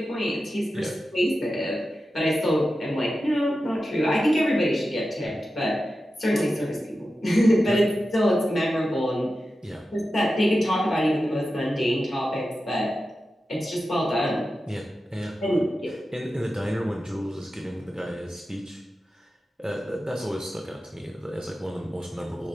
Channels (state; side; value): normal; both; correlation 0.92